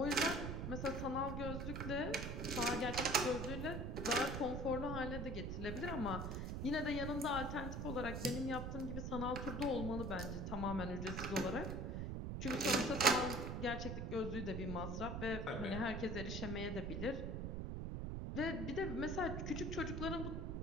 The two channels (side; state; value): right; noise; rumble, 3 dB below the sound